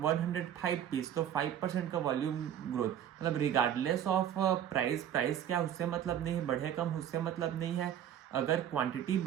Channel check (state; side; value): quieter; left; 10.0 dB